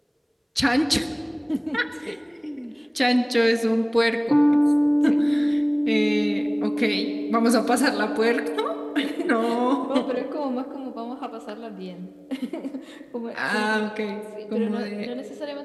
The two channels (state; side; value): identical; both; correlation 1.00